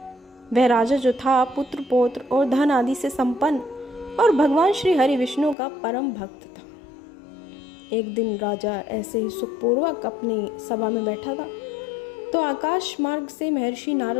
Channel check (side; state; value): right; drops out; at 5.6 s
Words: वह राजा जो था पुत्र पौत्र और धन आदि से संपन्न और भगवान श्री हरि विष्णु का परम भक्त था। एक दिन राजा ऐसे ही सुखपूर्वक अपनी सभा में बैठा था तो आकाश मार्ग से महर्षि